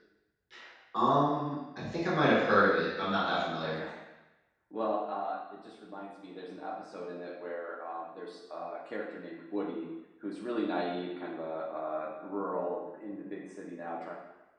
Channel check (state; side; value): identical; both; correlation 1.00